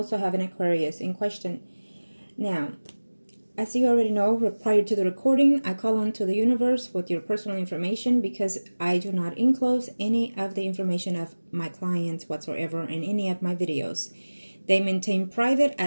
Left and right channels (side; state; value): both; inverted; correlation -1.00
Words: have an Aquarius in question. Now, as you already know, prior to the recording, I call on to the universe with your personal information because I do not enclose any of the information of my clients whatsoever in any of my videos. They maintain private